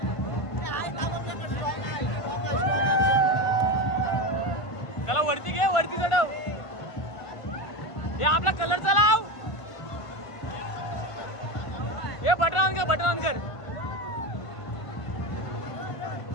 त्याला वरती घे, वरती चढव. हे आपला कलरचा लाव. हे बटन ऑन कर, बटन ऑन कर.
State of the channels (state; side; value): late; right; 1.5 ms